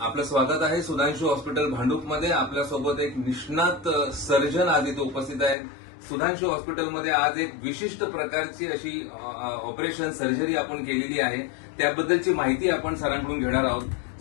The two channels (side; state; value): right; drops out; at 5.6 s